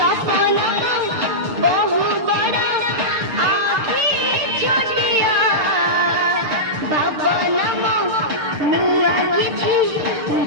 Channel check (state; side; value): late; left; 6.7 ms